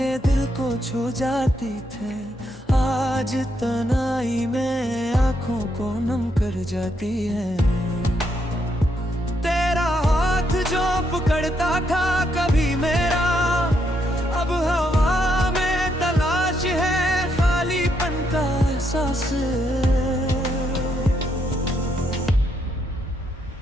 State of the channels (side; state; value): both; normal; correlation 0.77